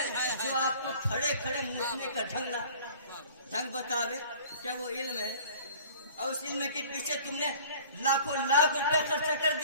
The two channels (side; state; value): both; inverted; correlation -0.48